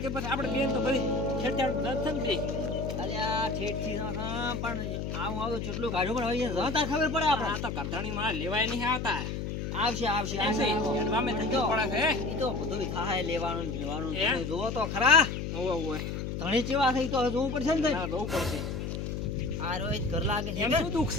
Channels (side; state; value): left; noise; hum, 4 dB below the sound